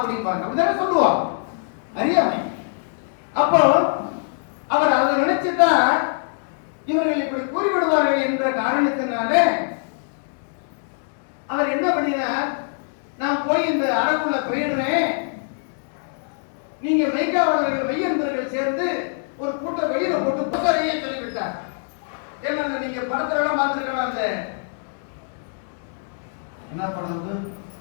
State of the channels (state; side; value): silent; right; digital silence